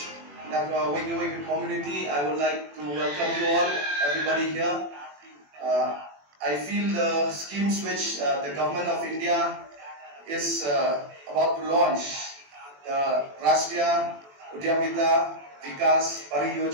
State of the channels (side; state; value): left; late; 21 ms